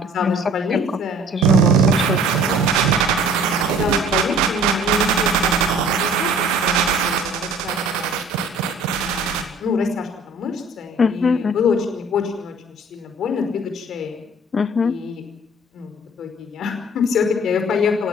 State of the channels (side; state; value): both; normal; correlation 0.52